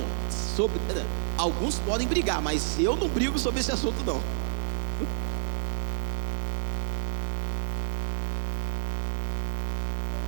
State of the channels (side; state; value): left; silent; digital silence